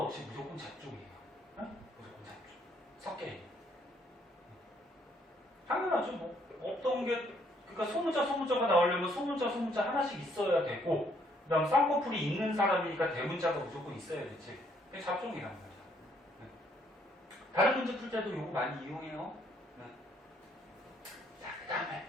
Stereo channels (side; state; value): both; normal; correlation 0.68